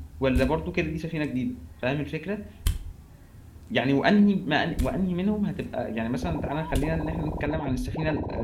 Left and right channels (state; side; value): identical; both; correlation 1.00